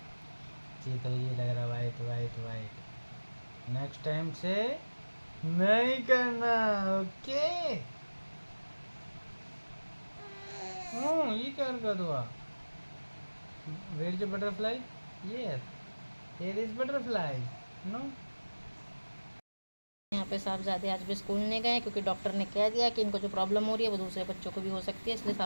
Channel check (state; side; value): inverted; both; correlation -1.00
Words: जी तो ये लग रहा white white white. Next time से नहीं करना, ओके? ये क्या कर हुआ? Where is butterfly? ये here is butterfly, no? यहाँ पे साहबजादे आज भी स्कूल नहीं गए क्योंकि डॉक्टर ने कह दिया कि इनको जो प्रॉब्लम हो रही है वो दूसरे बच्चों को भी हो सकती है, इसलिए